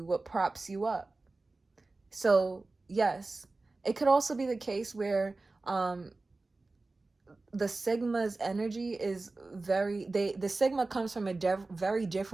what props you up. So yes, it could also be the case where the Sigma's energy is the Sigma comes from a very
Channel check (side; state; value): left; quieter; 3.4 dB